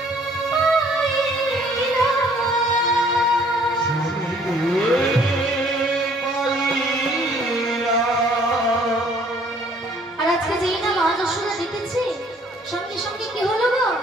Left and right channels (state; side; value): normal; both; correlation 0.59